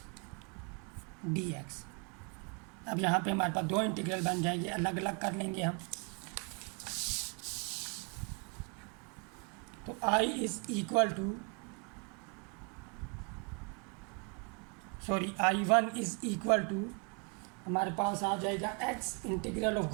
dx। अब यहाँ पे हमारे पास 2 इंटीग्रल बन जाएंगे, अलग अलग कर लेंगे हम। तो I is equal to I1 is equal to हमारे पास आ जाएगा x integral of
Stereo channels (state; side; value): quieter; left; 36.2 dB